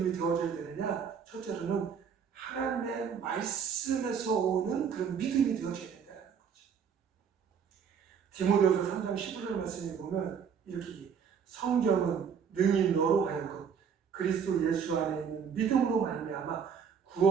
되어져야 되느냐? 첫째로는 하나님의 말씀에서 오는 그런 믿음이 되어져야 된다는 거죠. 디모데후서 3장 15절 말씀에 보면 이렇게 성경은 능히 너로 하여금 그리스도 예수 안에 있는 믿음으로 말미암아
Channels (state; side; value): quieter; left; 7.0 dB